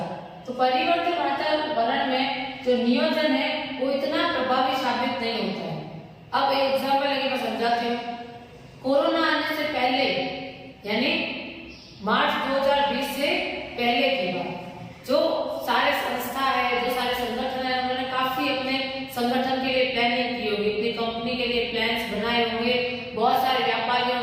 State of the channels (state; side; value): identical; both; correlation 1.00